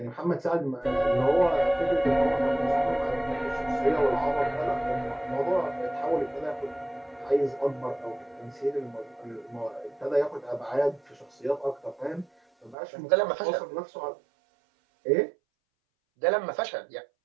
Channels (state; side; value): drops out; left; at 12.8 s